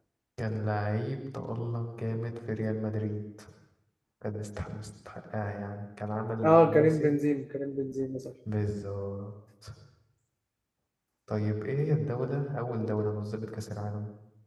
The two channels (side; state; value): both; identical; correlation 1.00